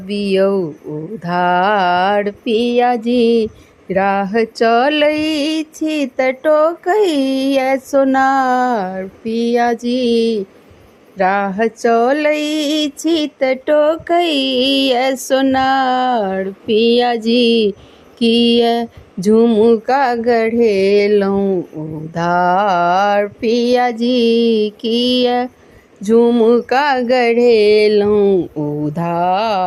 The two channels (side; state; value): both; identical; correlation 1.00